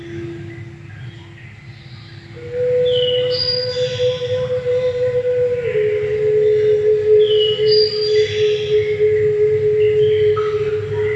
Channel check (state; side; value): identical; both; correlation 1.00